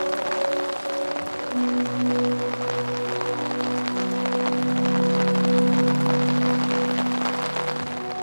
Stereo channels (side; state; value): both; inverted; correlation -1.00